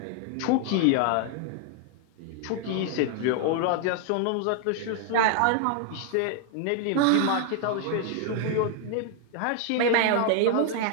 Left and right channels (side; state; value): both; different; correlation 0.00